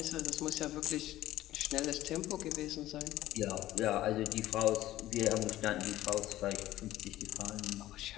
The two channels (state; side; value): quieter; right; 14.9 dB